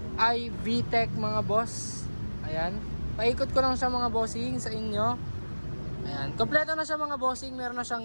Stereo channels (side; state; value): both; inverted; correlation -1.00